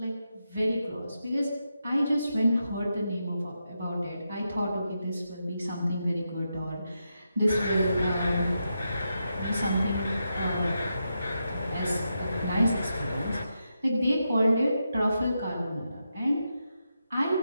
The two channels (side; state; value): both; inverted; correlation -0.85